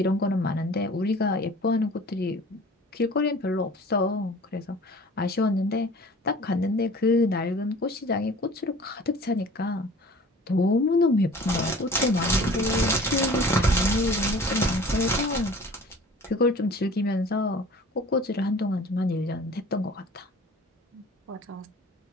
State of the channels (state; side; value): normal; both; correlation 0.45